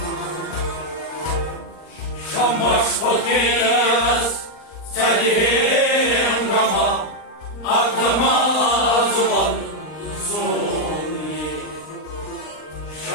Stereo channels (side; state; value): right; late; 39 ms